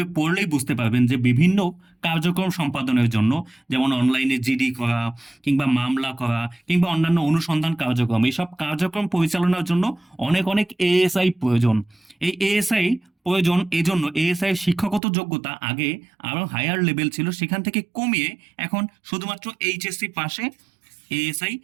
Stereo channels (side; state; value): left; drops out; at 15.0 s